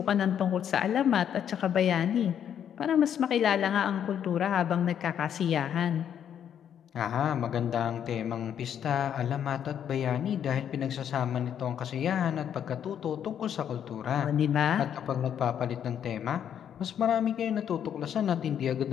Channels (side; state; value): right; quieter; 9.1 dB